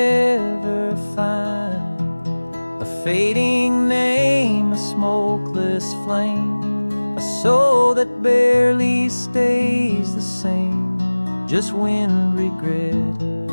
find. A fading name, a smokeless flame, a soul that barely stays the same. Just wind, regret,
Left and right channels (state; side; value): inverted; both; correlation -1.00